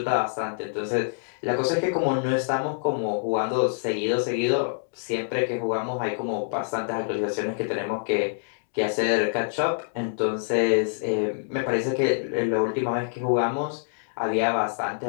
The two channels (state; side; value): silent; right; digital silence